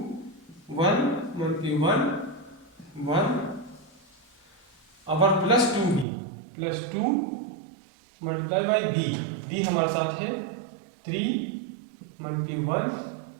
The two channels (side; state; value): left; drops out; at 6.1 s